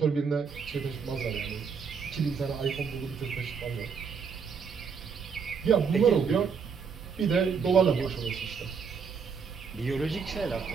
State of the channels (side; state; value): left; quieter; 6.0 dB